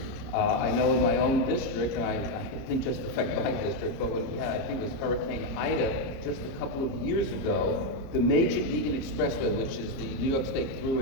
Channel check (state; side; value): late; right; 30 ms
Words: I know in my own district, and I didn't just affect my district, but when we had, I think it was Hurricane Ida just a couple of years ago, the major Beacon Expressway, which is the New York State